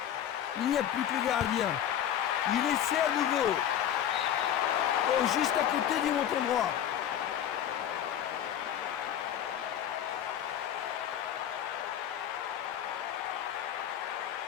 Il n'y a plus que le gardien. Il essaie à nouveau. Oh, juste à côté du montant droit.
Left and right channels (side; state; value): right; quieter; 10.2 dB